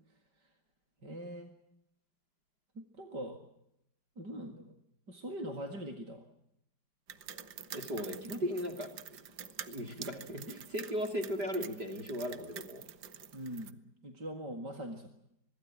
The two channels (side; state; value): left; late; 5.0 ms